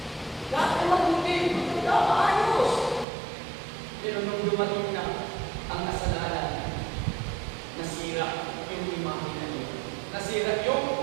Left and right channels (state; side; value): drops out; left; at 3.1 s